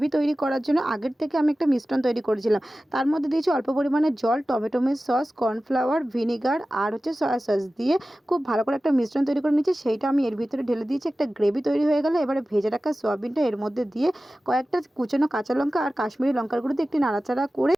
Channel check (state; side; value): normal; both; correlation 0.95